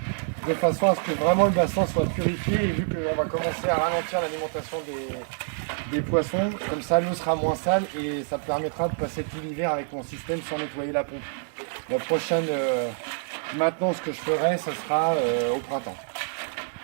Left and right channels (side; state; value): left; silent; digital silence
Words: de façon à ce que vraiment le bassin soit purifié. Et vu qu'on va commencer à ralentir l'alimentation des poissons, comme ça l'eau sera moins sale et ça permettra de passer tout l'hiver avec mon système sans nettoyer la pompe. La prochaine maintenance que je ferai, ce sera au printemps,